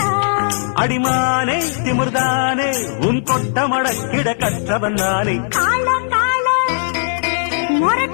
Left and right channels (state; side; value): silent; right; 68 dB below the other